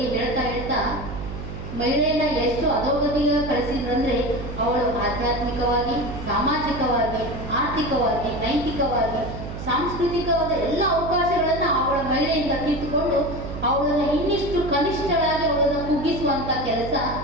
ಹೇಳ್ತಾ ಮಹಿಳೆಯನ್ನ ಎಷ್ಟು ಅಧೋಗತಿಗೆ ಕಳಿಸಿದ್ರಂದ್ರೆ, ಅವಳು ಆಧ್ಯಾತ್ಮಿಕವಾಗಿ, ಸಾಮಾಜಿಕವಾಗಿ, ಆರ್ಥಿಕವಾಗಿ, ನೈತಿಕವಾಗಿ, ಸಾಂಸ್ಕೃತಿಕವಾದ ಎಲ್ಲ ಅವಕಾಶಗಳನ್ನ ಅವಳ ಮಹಿಳೆಯಿಂದ ಕಿತ್ತುಕೊಂಡು ಅವಳನ್ನ ಇನ್ನಿಷ್ಟು ಕನಿಷ್ಠಳಾಗಿ ಅವಳನ್ನು ಕುಗ್ಗಿಸುವಂತ ಕೆಲಸ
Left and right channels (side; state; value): right; noise; hum, 8 dB below the sound